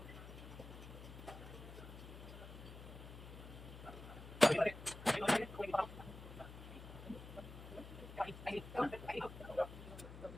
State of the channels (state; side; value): noise; left; hum, 12 dB below the sound